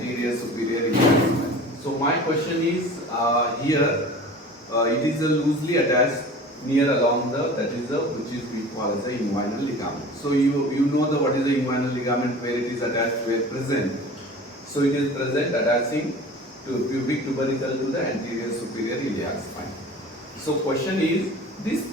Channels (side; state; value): both; normal; correlation 0.40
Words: superior iliac. So my question is here. It is loosely attached near along the, that is the, which is we call as the inguinal ligament. So you know the what is the inguinal ligament, where it is attached, where present. So it is present attaching to pubic tubercle to the anterior superior iliac spine. So question is, this